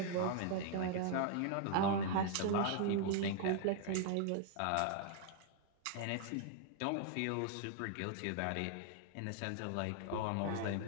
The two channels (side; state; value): both; different; correlation 0.00